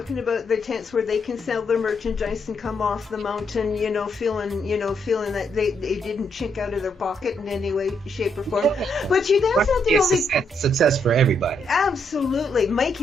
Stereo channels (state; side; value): normal; both; correlation 0.76